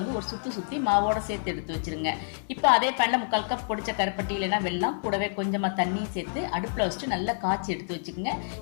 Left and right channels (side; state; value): right; silent; digital silence